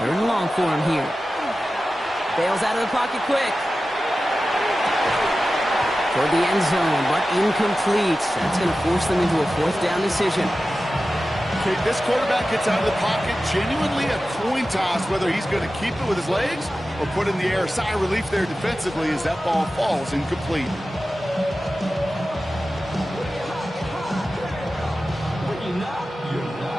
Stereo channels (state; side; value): normal; both; correlation 0.94